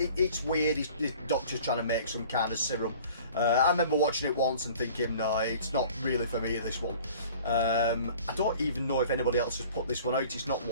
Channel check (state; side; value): inverted; both; correlation -0.47